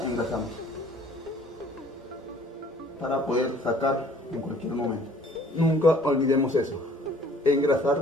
engrasamos para poder sacar en cualquier momento. Nunca olvidemos eso,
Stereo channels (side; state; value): both; normal; correlation 0.55